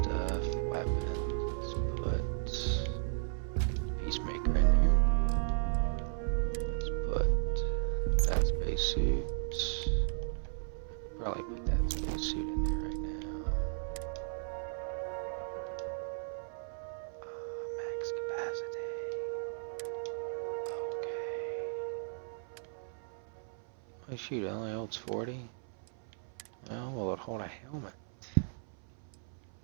weapons. Let's put Peacemaker in here. Let's put that spacesuit. Probably put that spacesuit in there right now. Max capacity. Okay. Oh shoot, it only holds 40? Well, will it hold a helmet?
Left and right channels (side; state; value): left; silent; 54 dB below the other